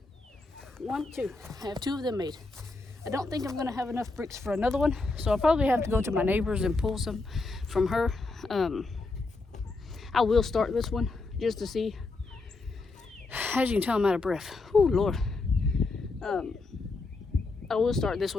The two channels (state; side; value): quieter; right; 3.5 dB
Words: 2. I have 2 of them made. I don't think I'm gonna have enough bricks for another one, so I'll probably have to go to my neighbor's and pull some from her. I will start this one just to see. As you can tell, I'm out of breath. Oh Lord. I will start this